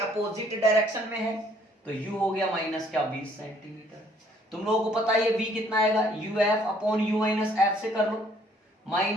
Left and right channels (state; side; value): normal; both; correlation 0.62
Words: डायरेक्शन में है, तो U हो गया माइनस क्या 20 सेंटीमीटर। तुम लोगों को पता है ये V कितना आएगा? UF upon U minus F से कर लो,